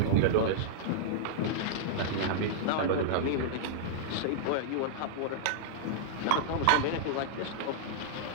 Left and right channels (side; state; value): both; different; correlation -0.02